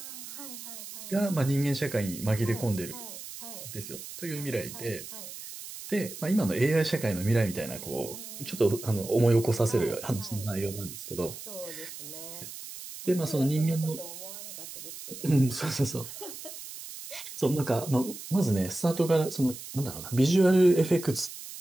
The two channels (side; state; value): right; noise; hiss, 12 dB below the sound